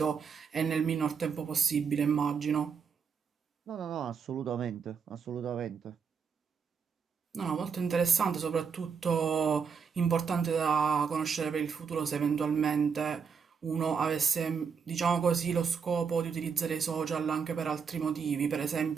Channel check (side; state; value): left; quieter; 6.2 dB